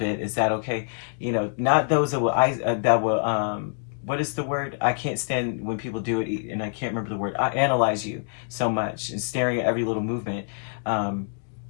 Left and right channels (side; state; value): right; silent; 61 dB below the other